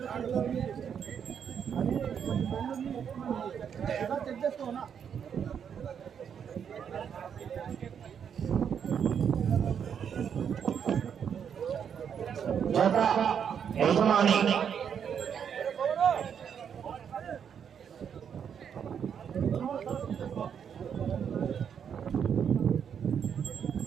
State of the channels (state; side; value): quieter; left; 7.8 dB